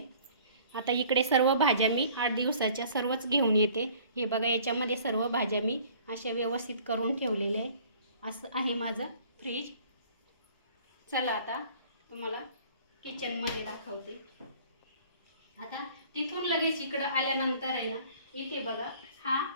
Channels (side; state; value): both; inverted; correlation -0.52